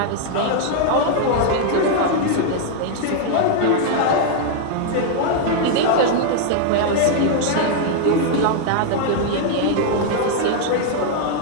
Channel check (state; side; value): different; both; correlation 0.00